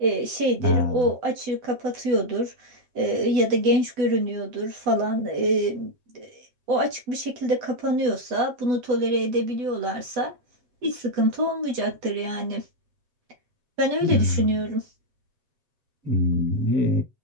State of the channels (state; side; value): late; left; 8.1 ms